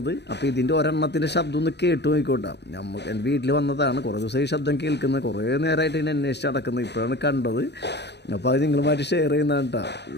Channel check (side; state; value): right; late; 0.50 ms